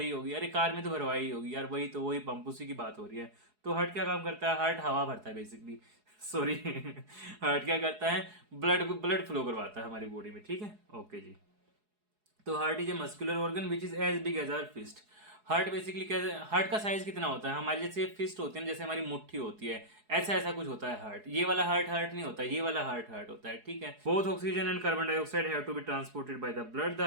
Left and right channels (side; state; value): left; late; 4.7 ms